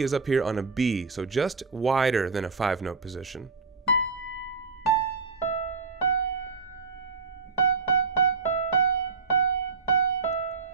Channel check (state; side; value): quieter; left; 4.7 dB